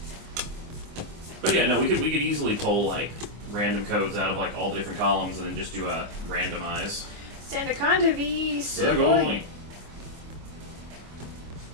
But yeah, no, we could easily pull like random codes out of like all the different columns and then just do a randomize. Sandaconda v. Sugoi. Sugoi.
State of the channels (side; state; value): left; late; 25 ms